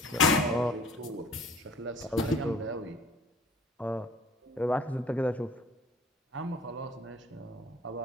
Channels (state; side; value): normal; both; correlation 0.50